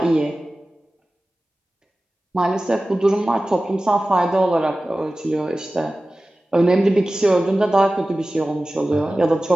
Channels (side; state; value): both; normal; correlation 0.96